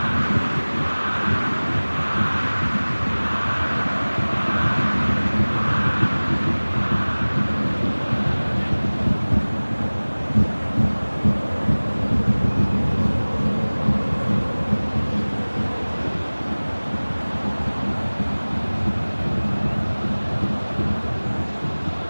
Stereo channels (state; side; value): inverted; both; correlation -1.00